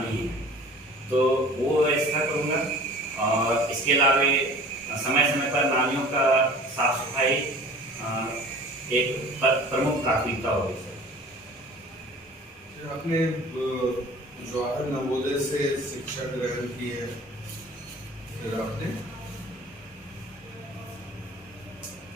है तो वो व्यवस्था करूँगा। और इसके अलावा समय समय पर नालियों का साफ सफाई एक प्रमुख प्राथमिकता होगी सर। आपने जवाहर नवोदय से शिक्षा ग्रहण की है, फिर आपने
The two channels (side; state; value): both; normal; correlation 0.44